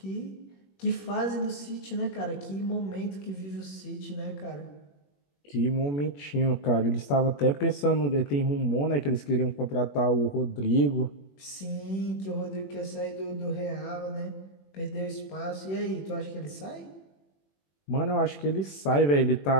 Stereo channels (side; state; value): right; late; 21 ms